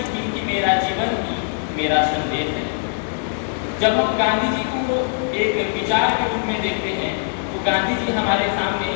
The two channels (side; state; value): right; silent; 65 dB below the other